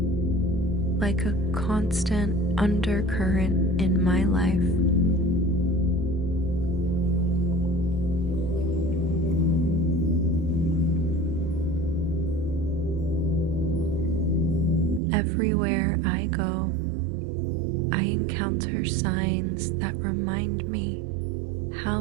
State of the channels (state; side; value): drops out; left; at 15.0 s